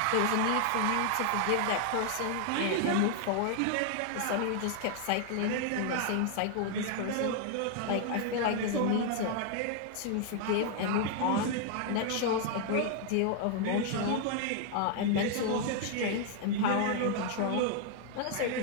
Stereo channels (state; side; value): different; both; correlation 0.00